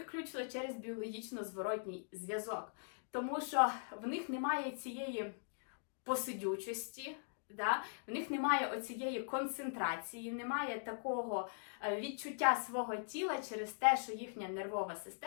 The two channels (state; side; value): silent; right; digital silence